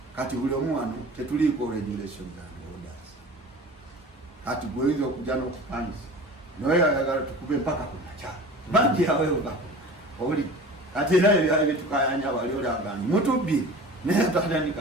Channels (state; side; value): normal; both; correlation 0.39